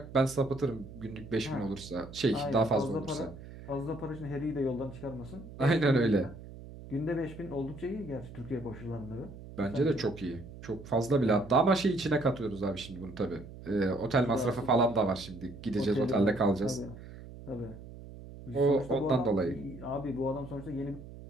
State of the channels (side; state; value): right; noise; hum, 15 dB below the sound